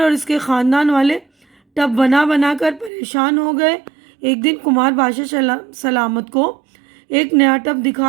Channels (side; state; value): left; drops out; at 2.9 s